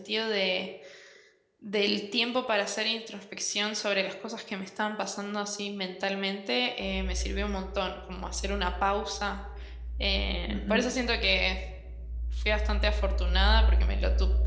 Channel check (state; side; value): identical; both; correlation 1.00